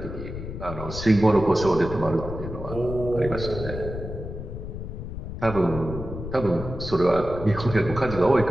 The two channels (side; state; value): left; noise; rumble, 8 dB below the sound